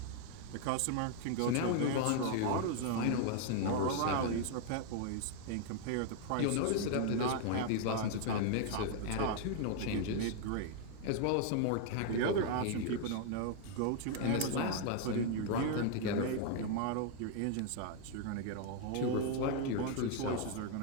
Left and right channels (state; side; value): different; both; correlation 0.00